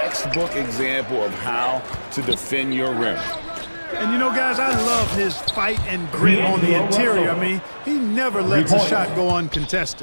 example of how to defend your rim. And you know, guys, I love his fight and grit on the interior. I mean, he never lets a shot go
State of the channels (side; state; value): both; inverted; correlation -1.00